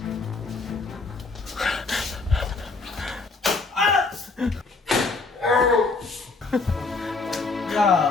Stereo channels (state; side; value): quieter; right; 3.9 dB